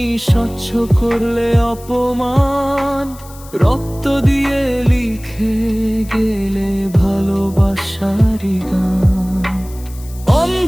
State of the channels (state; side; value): noise; left; hiss, 21 dB below the sound